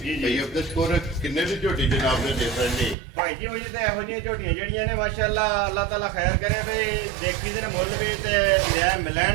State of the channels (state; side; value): drops out; left; at 3.0 s